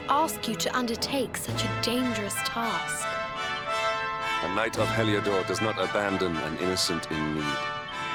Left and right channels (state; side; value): identical; both; correlation 1.00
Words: ask you to undertake such a dangerous task. A knight of Heliodor does not abandon an innocent in need.